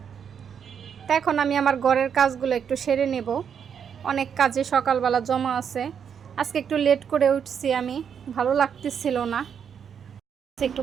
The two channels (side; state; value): left; quieter; 7.6 dB